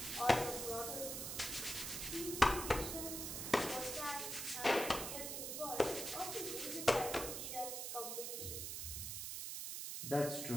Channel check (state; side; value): noise; right; hiss, 4 dB below the sound